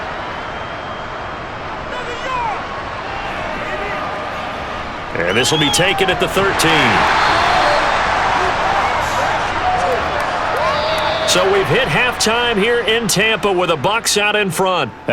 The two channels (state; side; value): identical; both; correlation 1.00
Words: And this will be taken at the 13. So we've hit halftime here in Tampa with the Bucs out in front.